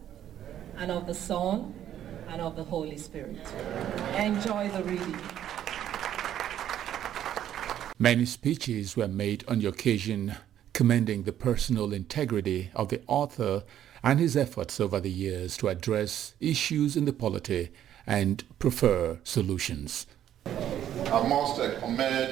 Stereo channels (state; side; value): quieter; left; 11.0 dB